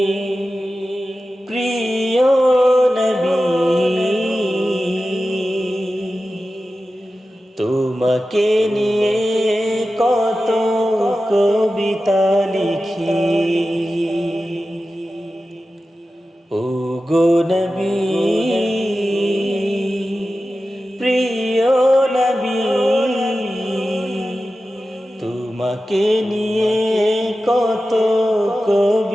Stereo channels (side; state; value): both; normal; correlation 0.93